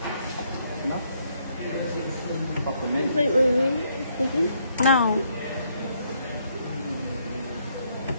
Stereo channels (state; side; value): inverted; both; correlation -0.72